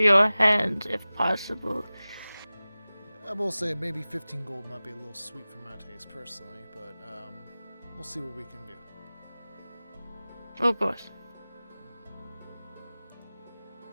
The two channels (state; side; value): inverted; both; correlation -0.97